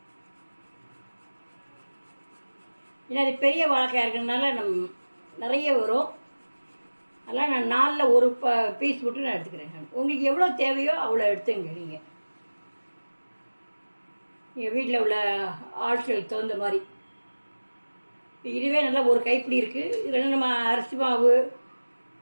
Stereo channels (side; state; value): both; inverted; correlation -1.00